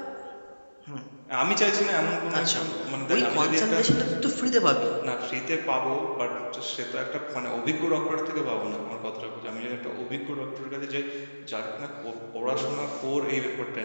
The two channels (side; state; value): both; inverted; correlation -1.00